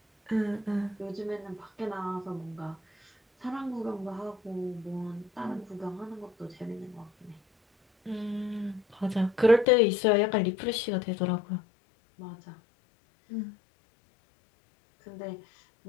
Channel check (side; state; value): right; drops out; at 9.7 s